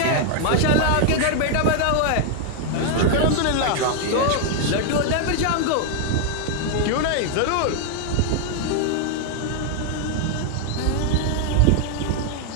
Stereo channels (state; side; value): different; both; correlation 0.00